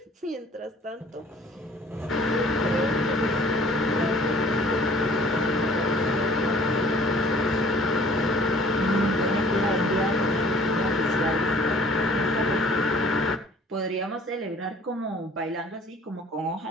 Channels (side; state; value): both; normal; correlation 0.53